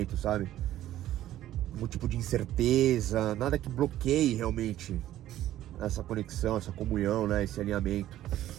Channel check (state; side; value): quieter; left; 13.3 dB